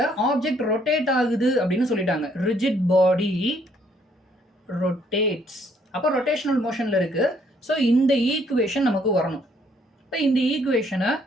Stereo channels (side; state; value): both; normal; correlation 0.67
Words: ஆப்ஜெக்ட் ரொட்டேட் ஆகுது அப்படின்னு சொல்லிட்டாங்க. ரிஜிட் பாடி ரொட்டேட்ஸ், அப்போ ரொட்டேஷனல் மோஷனில் இருக்குது. ஸோ இந்த ஈக்குவேஷன் நமக்கு வரணும். இப்போ இந்த ஈக்குவேஷனை